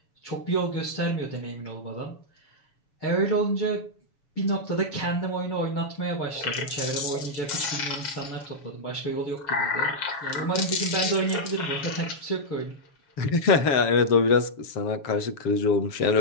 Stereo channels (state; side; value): late; right; 7.0 ms